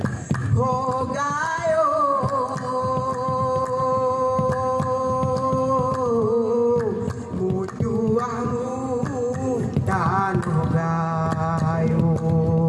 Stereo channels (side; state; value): both; identical; correlation 1.00